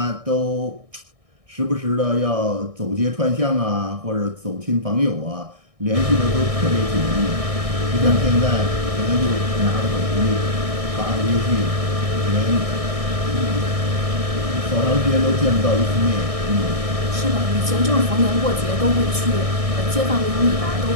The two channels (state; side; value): late; left; 1.6 ms